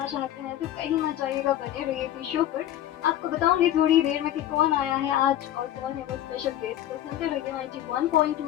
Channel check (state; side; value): quieter; right; 12.3 dB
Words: चाहते हैं तो कहीं मत जाइएगा, बने रहिए इसी शो पर। आपको बताऊंगी थोड़ी देर में कि कौन आया है आज और कौन है वो स्पेशल गेस्ट। तो सुनते रहिए